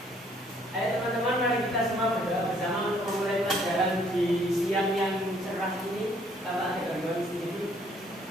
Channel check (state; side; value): normal; both; correlation 0.63